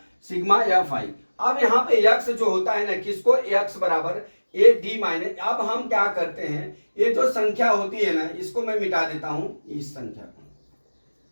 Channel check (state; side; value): inverted; both; correlation -1.00